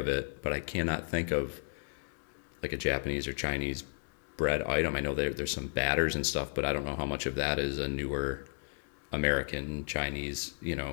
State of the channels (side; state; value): right; silent; digital silence